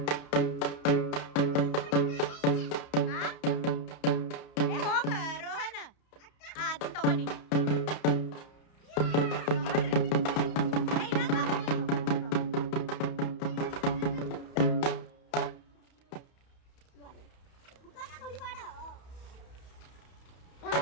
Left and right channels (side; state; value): right; late; 31 ms